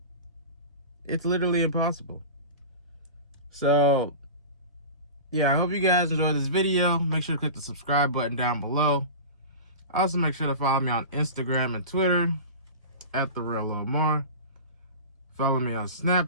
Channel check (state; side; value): inverted; both; correlation -0.31